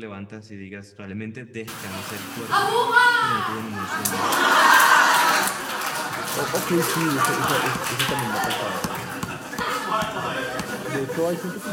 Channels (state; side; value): identical; both; correlation 1.00